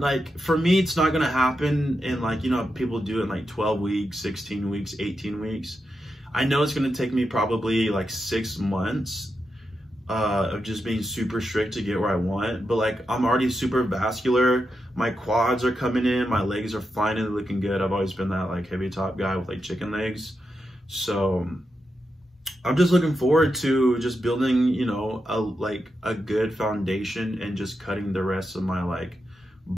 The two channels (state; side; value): normal; both; correlation 0.87